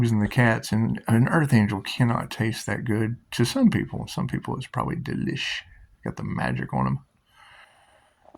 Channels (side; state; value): both; identical; correlation 1.00